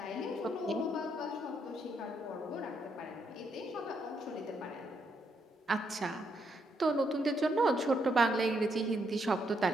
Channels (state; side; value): normal; both; correlation 0.77